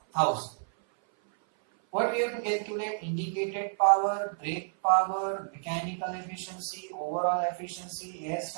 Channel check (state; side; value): silent; left; 56 dB below the other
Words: 1000. What we have to calculate? Indicated power, brake power, mechanical efficiency, overall efficiency, air